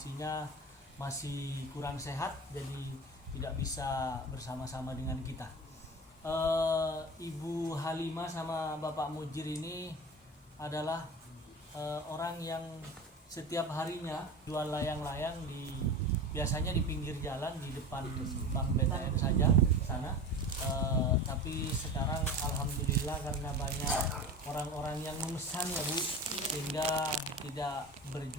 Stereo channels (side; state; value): both; normal; correlation 0.31